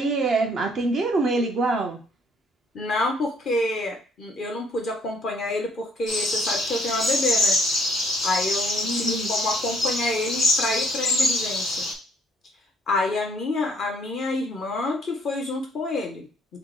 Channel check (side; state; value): both; normal; correlation 0.64